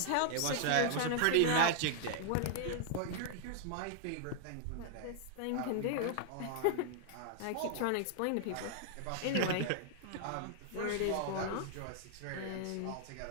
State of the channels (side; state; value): both; different; correlation 0.00